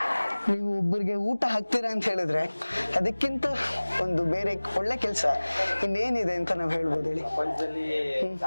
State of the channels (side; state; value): both; inverted; correlation -1.00